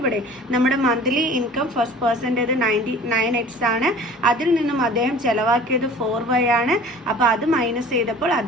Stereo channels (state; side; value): normal; both; correlation 0.45